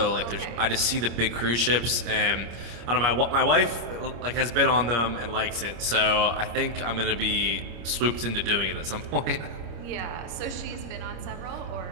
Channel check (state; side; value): late; left; 26 ms